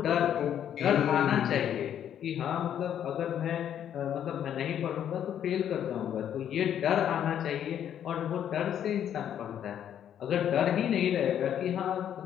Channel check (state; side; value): quieter; right; 9.8 dB